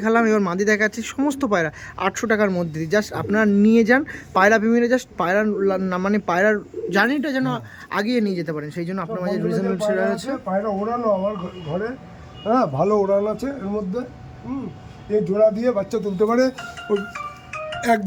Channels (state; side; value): identical; both; correlation 1.00